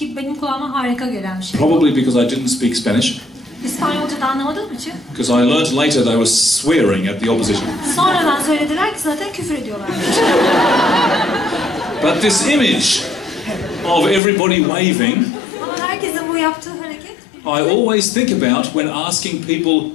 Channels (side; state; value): right; drops out; at 14.2 s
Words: benim kulağıma harika gelen bir şey. Probably because I didn't speak Spanish, İspanyolca da anlamadığım için. because I learnt later they were swearing at the opposition. Sonradan söylediler ki zaten küfür ediyorlar. But this image of everybody waving, Ama herkesin bu yaptığı hareket. I always think about when asking people